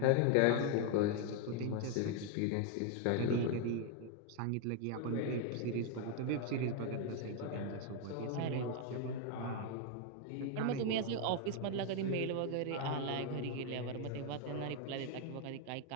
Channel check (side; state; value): both; different; correlation 0.00